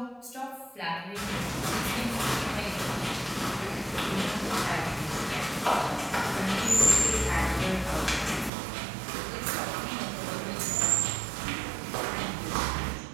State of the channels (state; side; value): drops out; left; at 8.5 s